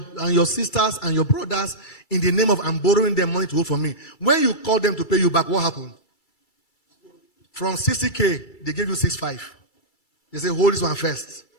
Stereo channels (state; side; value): late; right; 2.3 ms